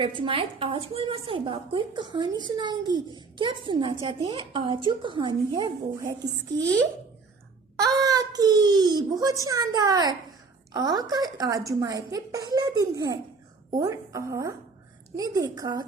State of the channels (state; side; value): quieter; left; 4.5 dB